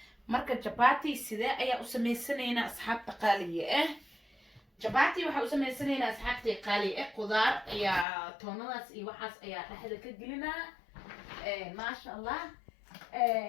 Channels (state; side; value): drops out; right; at 8.1 s